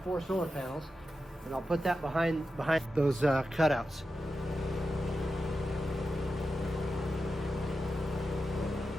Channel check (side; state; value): both; normal; correlation 0.91